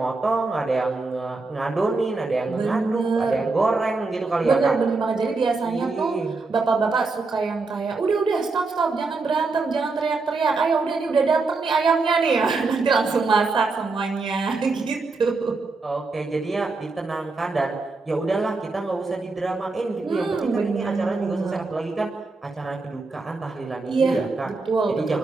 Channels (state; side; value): quieter; left; 3.8 dB